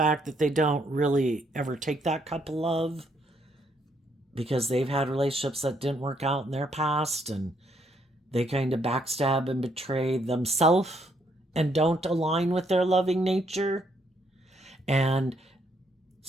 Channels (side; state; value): both; normal; correlation 0.72